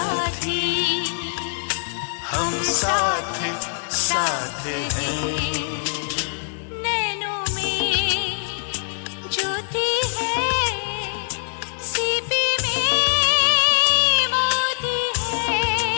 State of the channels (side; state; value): right; silent; 63 dB below the other